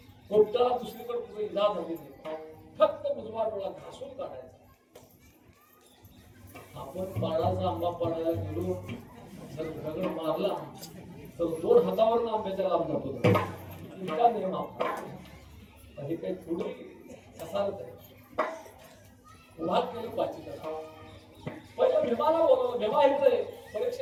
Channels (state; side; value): identical; both; correlation 1.00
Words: पोपटाला दुसरीकडे कुठे इजा झाली नाही, फक्त उजवा डोळा घासून काढायचा. आपण पाडाचा आंबा पाडायला गेलो, जर दगड मारला तर 2 हातावर आंब्याच्या लांब जातो. इतका नियम आपला. हे काही थोडी असालच आहे. उभा केलं पाचीला, पहिलं भीमाला बोलवलं. भीमा हे